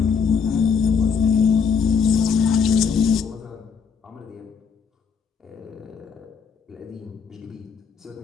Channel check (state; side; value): quieter; right; 6.2 dB